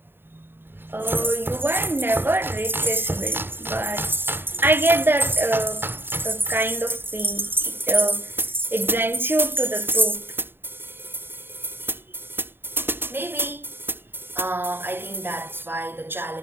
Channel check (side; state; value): left; late; 0.10 ms